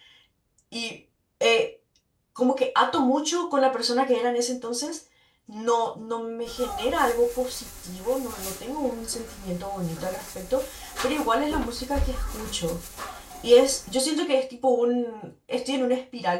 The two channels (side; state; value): both; identical; correlation 1.00